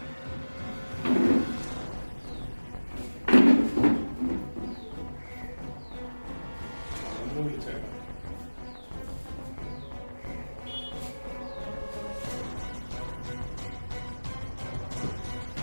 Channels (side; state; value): both; inverted; correlation -1.00